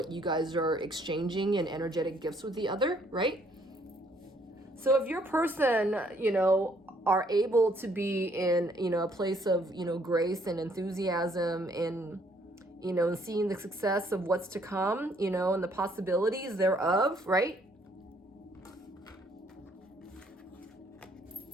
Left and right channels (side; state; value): both; normal; correlation 0.66